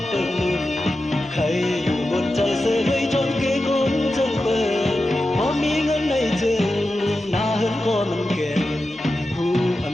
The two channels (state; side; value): normal; both; correlation 0.91